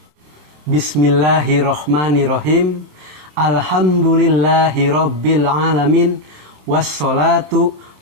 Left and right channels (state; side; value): late; left; 27 ms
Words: Bismillahirrahmanirrahim. Alhamdulillahi rabbil alamin. Wassalatu